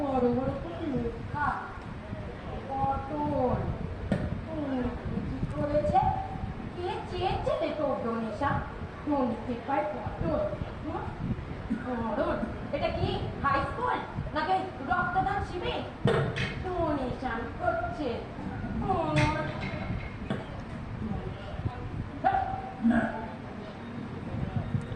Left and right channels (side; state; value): both; identical; correlation 1.00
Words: বড় করে লেখা পটল। কি করেছে? কে চেয়েছে রে তোর ডোনেশন? ডোনেতে পায় পটল। পটল এটা কি হাই স্কুল নাকি রক্তদান শিবির? ডোনেশন করছে।